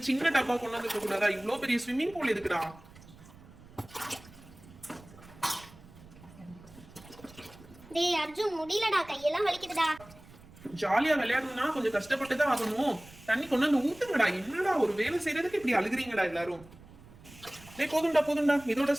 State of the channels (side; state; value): right; noise; rumble, 21 dB below the sound